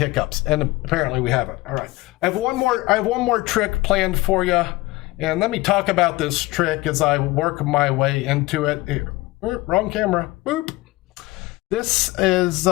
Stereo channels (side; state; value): right; quieter; 20.5 dB